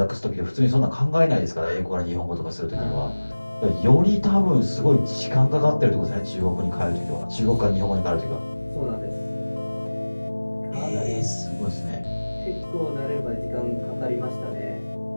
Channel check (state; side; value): inverted; both; correlation -1.00